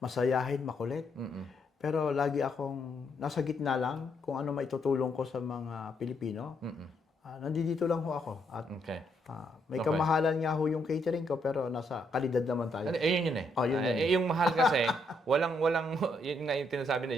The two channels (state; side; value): normal; both; correlation 0.75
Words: Masayahin, makulit. Pero lagi akong nasa gitna lang kung ano maitutulong ko sa mga Pilipino. Nandito lang ho ako. At Okay. may Okay. kamahalan nga ho yung catering ko, pero nasa kalidad naman tayo. Yun yun eh. Oh, yun yun. Yung mahal kasi, walang, yun nga yung tinasabi na,